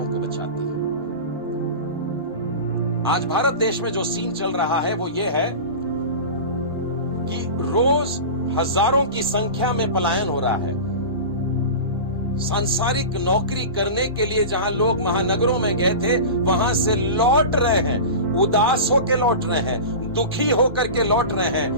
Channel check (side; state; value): both; inverted; correlation -0.30